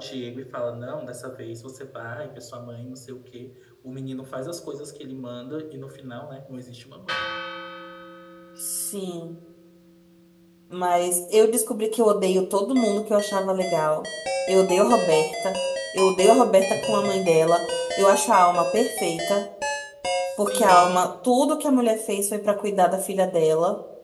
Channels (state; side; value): identical; both; correlation 1.00